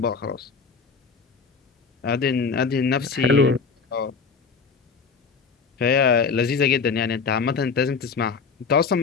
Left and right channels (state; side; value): quieter; right; 5.3 dB